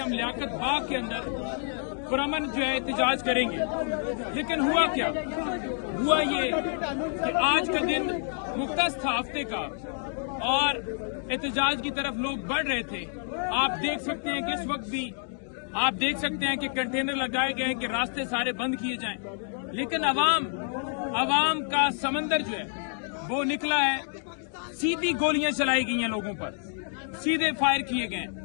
हम लियाकत बाग के अंदर पुरअमन जो है एहतजाज करेंगे। लेकिन हुआ क्या? हुआ ये कि आज का दिन मुख्तस था हफ्ते का और एहतजाज की तरफ लोग बढ़ रहे थे। आप देख सकते हैं कि इस वक्त भी आप देख सकते हैं कि कंटेनर लगाए गए हैं कि रास्ते सारे बंद किए जाएं, लेकिन अवाम का समंदर जो है वो निकला है। सीधी गोलियां चलाई गई हैं लोगों पर, सीधे फायर किए गए,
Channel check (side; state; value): right; silent; 58 dB below the other